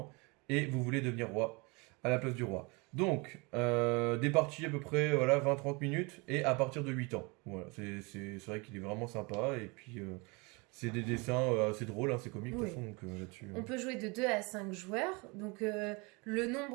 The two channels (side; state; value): left; quieter; 28.5 dB